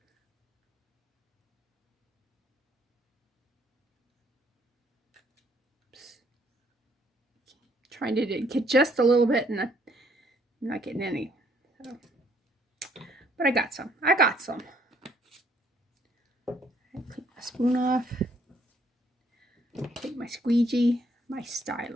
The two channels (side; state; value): both; normal; correlation 0.66